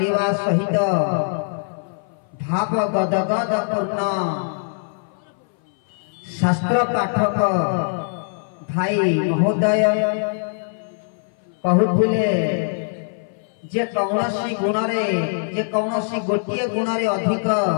सहित भाव गदगद पूर्ण शास्त्र पाठक भाई महोदय कहूले जे कौनसी गुणरे जे कौनसी गोटे गुणरे अधिक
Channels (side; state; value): right; silent; 59 dB below the other